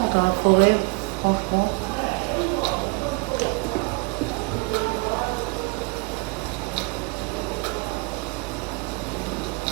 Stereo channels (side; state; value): left; quieter; 29.2 dB